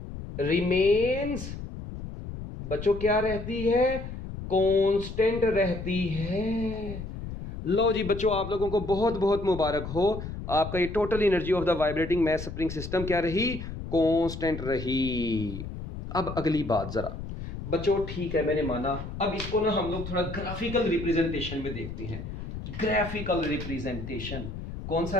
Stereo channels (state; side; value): noise; left; rumble, 9 dB below the sound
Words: remains, बच्चों क्या रहती है? कांस्टेंट रहती है। लो जी बच्चों, आप लोगों को बहुत बहुत मुबारक हो, आपका ये total energy of the vibrating mass spring system क्या रही? कांस्टेंट रही। अब अगली बात जरा बच्चों, ठीक है मैंने माना, अब इसको ना हम लोग थोड़ा ग्राफिकल रिप्रेजेंटेशन में देखते हैं। ग्राफिकल रिप्रेजेंटेशन, कौन सा